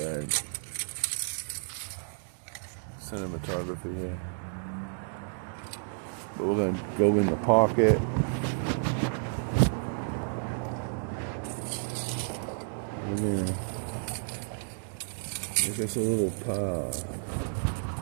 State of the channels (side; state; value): left; silent; digital silence